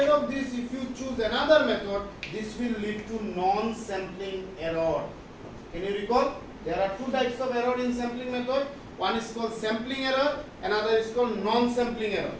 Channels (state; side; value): identical; both; correlation 1.00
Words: of this if you choose another method this will lead to non sampling error can you recall there are two types of error in sampling method one is called sampling error another is called non sampling error